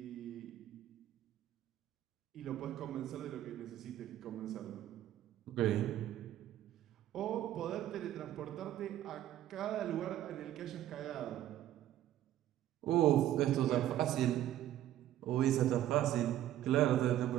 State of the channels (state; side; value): quieter; left; 12.6 dB